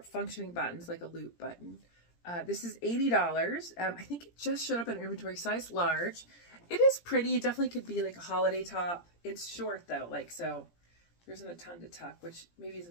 functioning buttons, like a loop button. This is $80. I think it just showed up in inventory, size large. It is pretty. It definitely could be like a holiday top. It's short though, like, so there isn't a ton to tuck, which maybe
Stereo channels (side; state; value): right; late; 17 ms